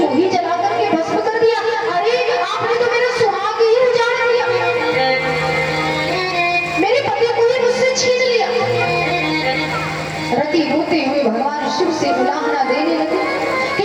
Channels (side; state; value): both; identical; correlation 1.00